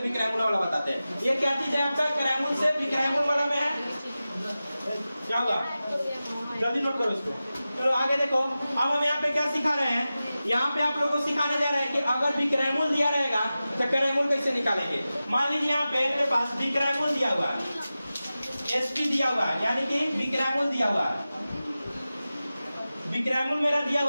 विक्रयमूल्य वाला बताते हैं। ये क्या चीज है आपका, क्रयमूल्य से विक्रयमूल्य वाला में है, क्या होगा, जल्दी नोट करो इसको। चलो आगे देखो, अब हम यहाँ पे क्या सिखा रहे हैं, यहाँ पे आप लोगों को सिखाने जा रहे हैं कि अगर विक्रयमूल्य दिया रहेगा तो क्रयमूल्य कैसे निकालेंगे। मान लीजिए यहाँ पे मेरे पास विक्रयमूल्य दिया हुआ है, एसपी दिया हुआ है, यानी कि विक्रयमूल्य दिया हुआ है। विक्रयमूल्य मेरा दिया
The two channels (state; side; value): inverted; both; correlation -0.95